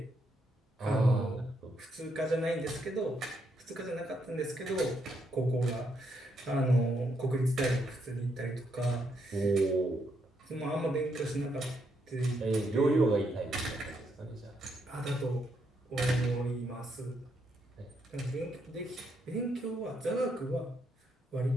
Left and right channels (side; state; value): both; normal; correlation 0.77